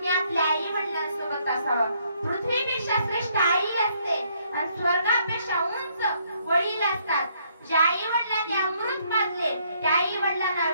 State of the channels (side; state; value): both; inverted; correlation -0.69